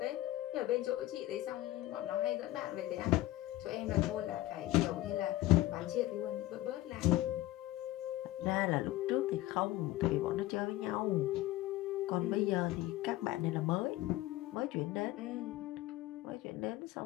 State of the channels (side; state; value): right; quieter; 16.6 dB